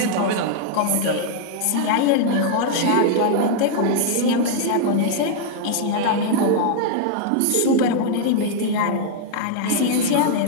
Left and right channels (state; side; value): different; both; correlation -0.01